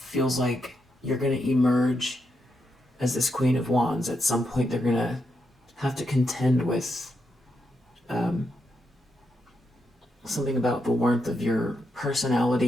like you're going to emerge as this Queen of Wands. At some point they're going to have to contend with something about the warmth of your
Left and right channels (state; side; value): normal; both; correlation 0.83